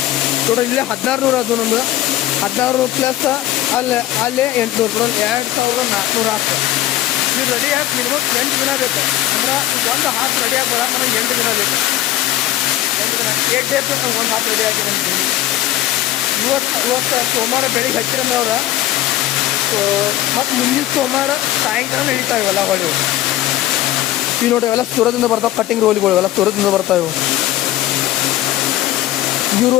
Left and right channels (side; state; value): right; quieter; 14.3 dB